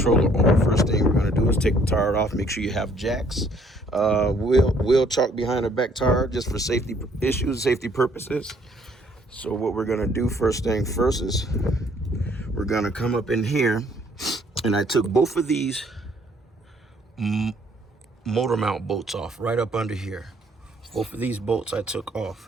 arm. First thing we're gonna do is take the tire off. Make sure you have jacks, wheel chalk behind the back tire, just for safety issues, safety purposes. So what we're gonna do first thing first is we're gonna come up in here. And I took both of these motor mount bolts off right up under here. Both of these bolts I took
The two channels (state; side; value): normal; both; correlation 0.63